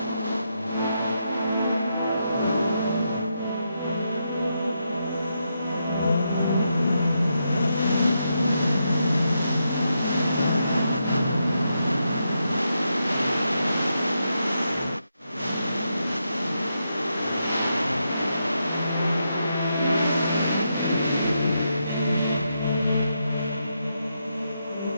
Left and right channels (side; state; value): both; inverted; correlation -0.83